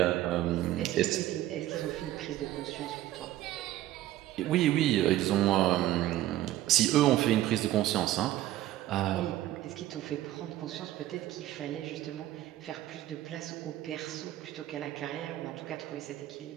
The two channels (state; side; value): quieter; left; 14.3 dB